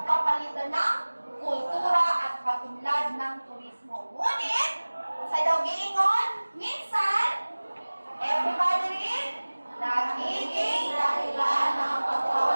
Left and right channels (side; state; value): both; inverted; correlation -1.00